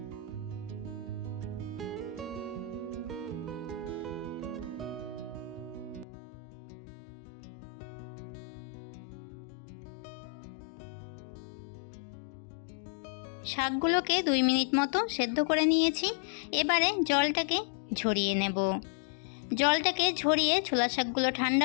শাকগুলোকে 2 মিনিট মতো সেদ্ধ করে নিয়েছি, এবারে জলটাকে ঝরিয়ে নেব। জলটাকে ঝরিয়ে ছোলা শাকগুলো ঠান্ডা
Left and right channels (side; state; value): right; drops out; at 6.1 s